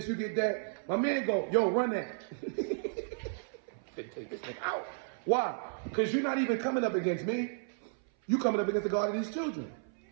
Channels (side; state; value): left; silent; 56 dB below the other